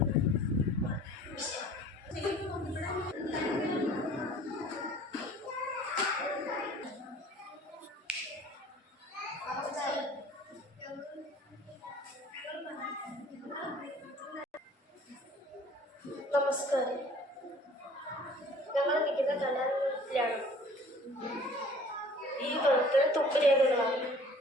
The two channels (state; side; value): normal; both; correlation 0.50